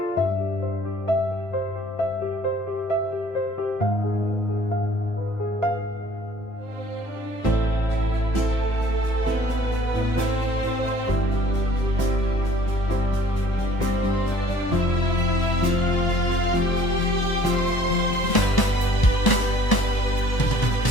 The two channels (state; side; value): late; right; 1.0 ms